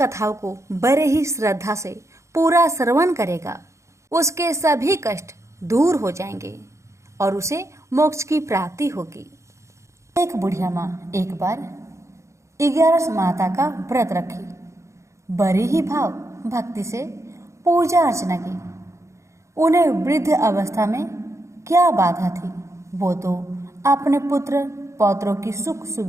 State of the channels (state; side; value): late; left; 0.14 ms